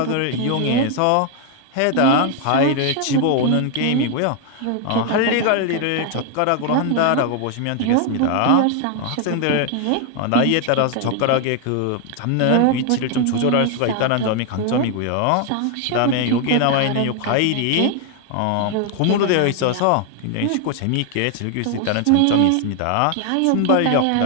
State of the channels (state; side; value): different; both; correlation 0.01